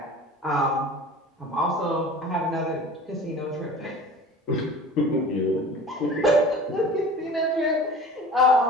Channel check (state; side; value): normal; both; correlation 0.40